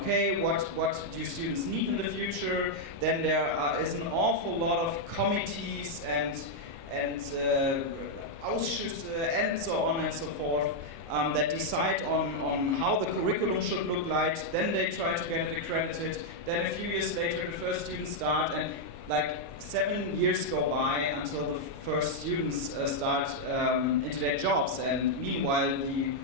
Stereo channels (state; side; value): late; left; 29 ms